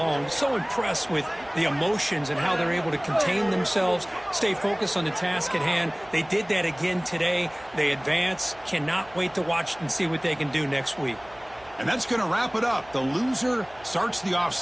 So impressed with the emotions and how they're able to contain themselves, stay focused on the task at hand. They did that again today. They advance. Cannot wait to watch and see what they can do next week. And that's going to wrap it up. The loser starts the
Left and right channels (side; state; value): right; noise; hum, 25 dB below the sound